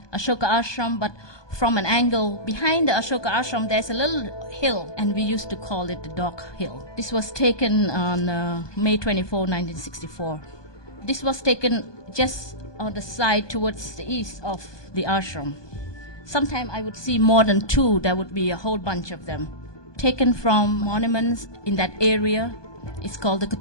Ashoka Ashram, but from an angle behind the Ashoka Ashram there's a little hill, and we used to call it the Dog Hill. This was taken on May 24, 1964. This was taken just on the side towards the east of the ashram. Sometimes I would see more than 2. There would be a whole bunch of them. Taken from monuments in that area. It's called the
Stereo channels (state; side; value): late; right; 1.2 ms